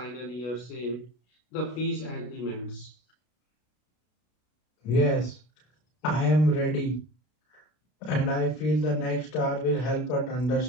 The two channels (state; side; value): late; right; 32 ms